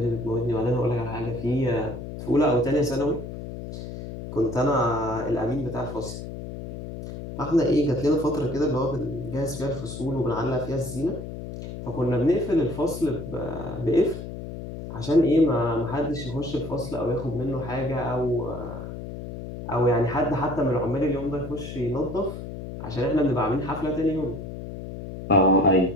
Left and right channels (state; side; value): noise; left; hum, 9 dB below the sound